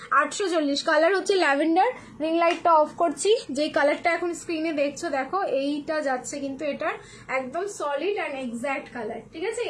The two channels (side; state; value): both; identical; correlation 1.00